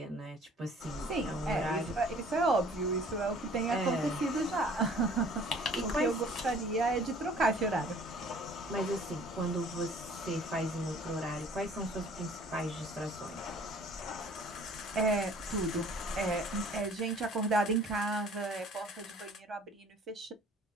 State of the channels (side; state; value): both; normal; correlation 0.53